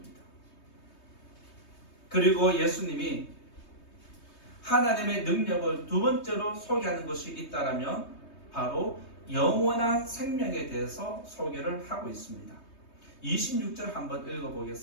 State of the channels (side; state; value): right; late; 3.2 ms